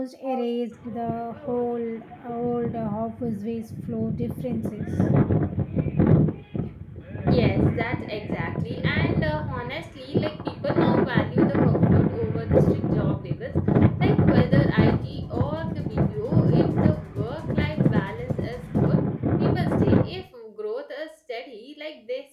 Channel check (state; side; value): identical; both; correlation 1.00